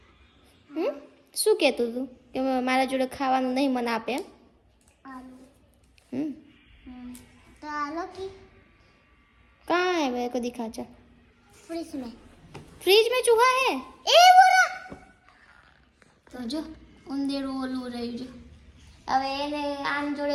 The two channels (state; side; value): identical; both; correlation 1.00